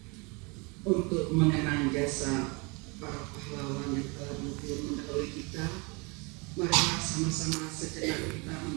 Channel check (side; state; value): left; quieter; 29.7 dB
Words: Untuk mengenang jasa para pahlawan yang telah mendahului kita, marilah sama-sama sejenak kita